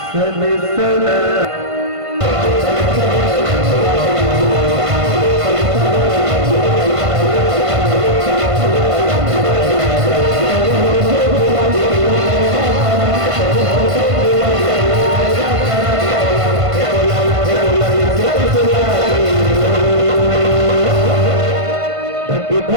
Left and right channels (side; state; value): left; late; 1.5 ms